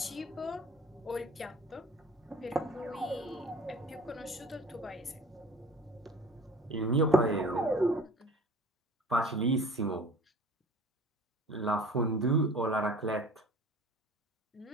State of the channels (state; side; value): normal; both; correlation 0.45